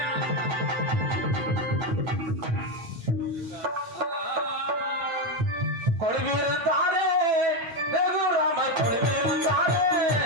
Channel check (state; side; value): late; left; 9.1 ms